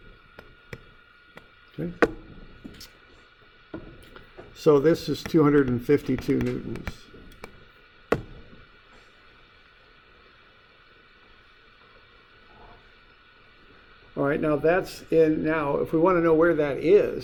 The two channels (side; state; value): both; identical; correlation 1.00